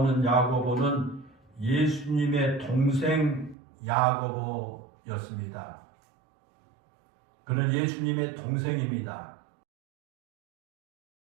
야고보는 예수님의 동생 야고보였습니다. 그는 예수님의 동생입니다.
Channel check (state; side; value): drops out; left; at 3.6 s